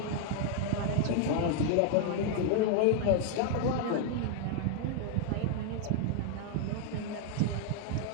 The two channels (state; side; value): different; both; correlation 0.00